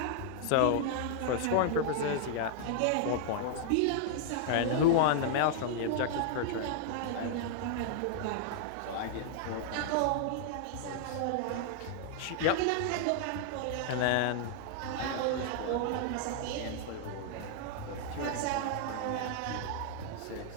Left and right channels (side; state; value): both; different; correlation -0.01